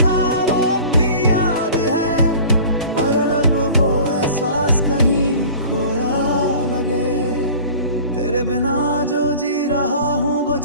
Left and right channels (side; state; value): both; inverted; correlation -0.43